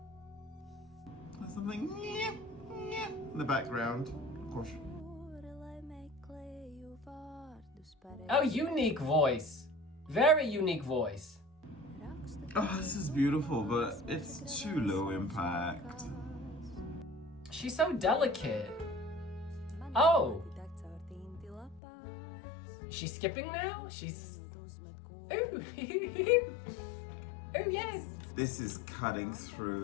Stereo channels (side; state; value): right; drops out; at 21.8 s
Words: There's something in the background, of course. Oh, unique voice. Very unique voice. Oh, this is beautiful, but it's too low impact. She's so delicate. Oh. She's skipping now? She's... Ooh. Oh, yes. This is cutting